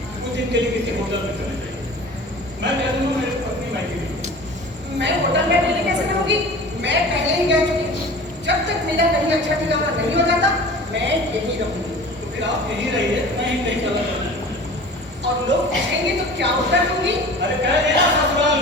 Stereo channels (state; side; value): normal; both; correlation 0.40